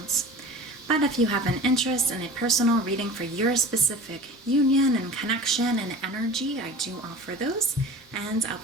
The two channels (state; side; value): normal; both; correlation 0.38